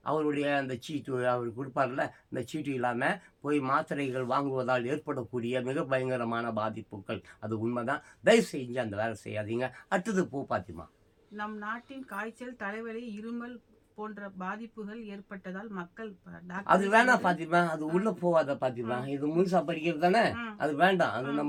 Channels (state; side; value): identical; both; correlation 1.00